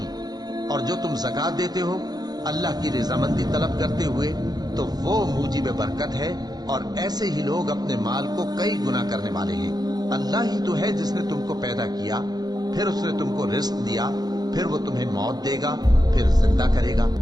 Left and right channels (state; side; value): late; left; 0.19 ms